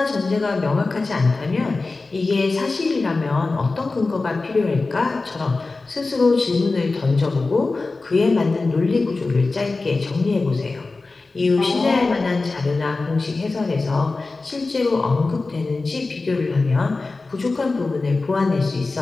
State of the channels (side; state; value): right; quieter; 3.6 dB